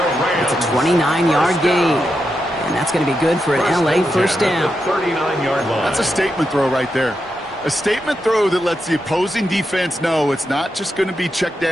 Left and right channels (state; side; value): normal; both; correlation 0.86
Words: It's a 29-yard gain. And that's going to be good for an LA first down. 39-yard line. That's a statement throw right there. A statement throw that lets the opposing defense know it's not just going to be check